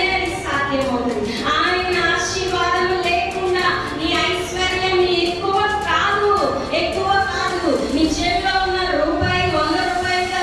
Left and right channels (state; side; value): identical; both; correlation 1.00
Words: అది సాధ్యమవుతుంది. ఆయన ఆశీర్వాదం లేకుండా నీ ఐశ్వర్యం ఎక్కువ కాదు, ఎక్కువ కాదు. నీ చేతిలో ఉన్న రూపాయి 100 రూపాయలుగా